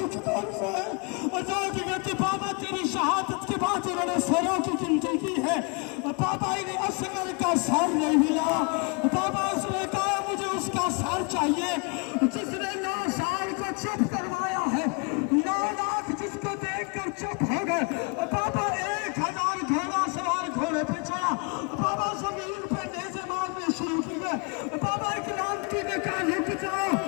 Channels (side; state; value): right; quieter; 32.2 dB